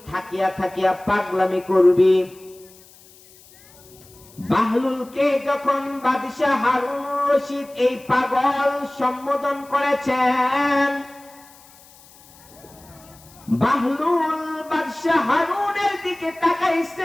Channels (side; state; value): left; noise; hiss, 25 dB below the sound